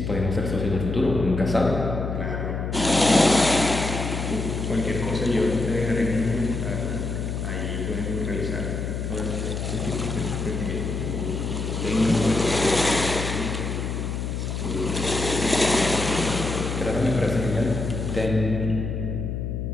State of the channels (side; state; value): left; noise; hum, 3 dB below the sound